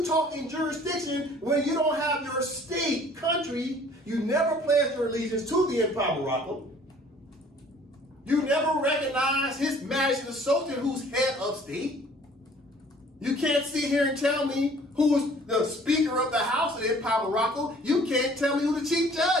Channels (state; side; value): normal; both; correlation 0.54